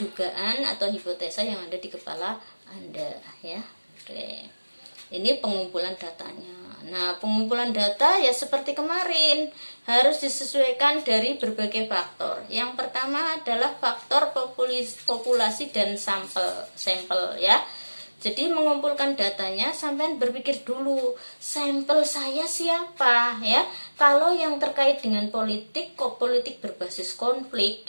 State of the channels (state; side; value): inverted; both; correlation -1.00